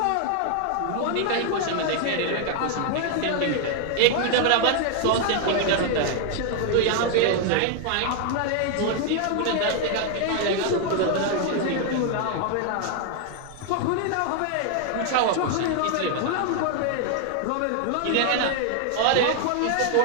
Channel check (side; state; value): both; different; correlation 0.00